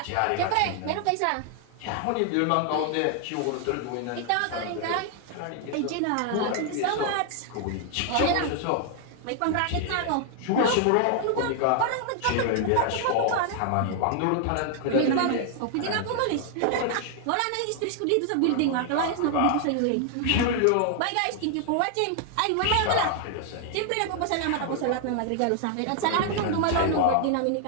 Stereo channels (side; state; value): both; different; correlation 0.00